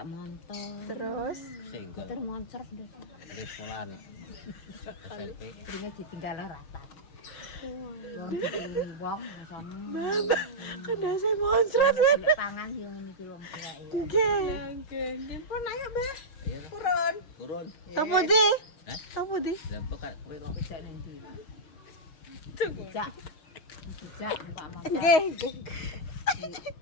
motor. terus Single. Motor moncrot deh. Wis sekolahan. SMP. Pringnya ditinggal rata. Wong sama. Mama, kan dasan moncrot kan. Golek pangan yo ngene iki wong tuwa ya. Nggih. Nggih, nggih pun ayo, Mbah. Iya. Purun. Turun. Topo di? Hah? Topo di? Lah kok kowe kok Bisa nanti. Tunggu. Jak. Jak numpak motor. Nggih, nggih.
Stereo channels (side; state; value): right; late; 6.3 ms